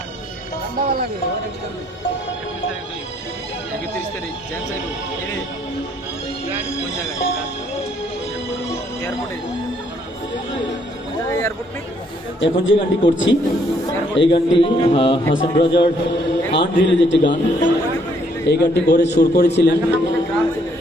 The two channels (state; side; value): normal; both; correlation 0.68